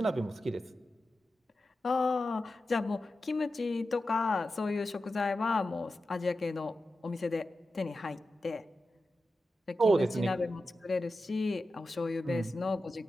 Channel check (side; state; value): both; normal; correlation 0.92